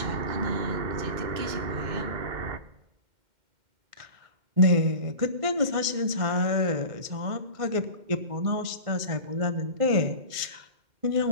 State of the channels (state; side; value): late; left; 2.1 ms